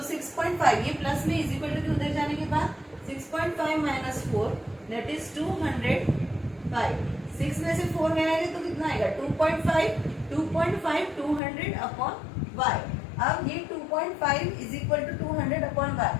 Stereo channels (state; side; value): drops out; right; at 11.4 s